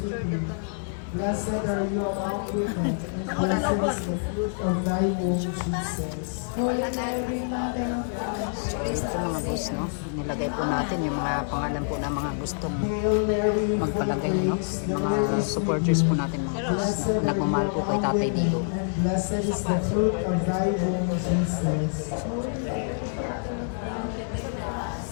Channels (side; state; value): right; silent; digital silence